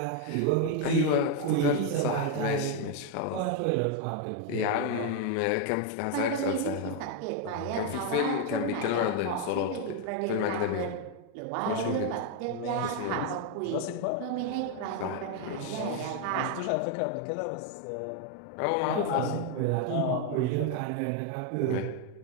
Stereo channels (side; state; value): both; different; correlation 0.01